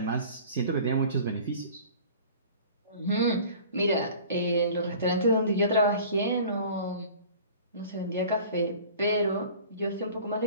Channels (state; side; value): inverted; both; correlation -0.45